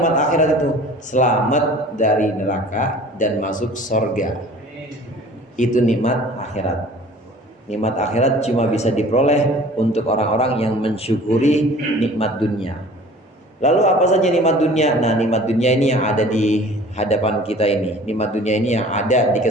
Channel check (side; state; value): both; normal; correlation 0.47